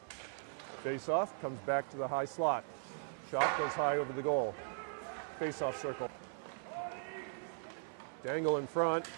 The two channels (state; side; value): silent; left; 52 dB below the other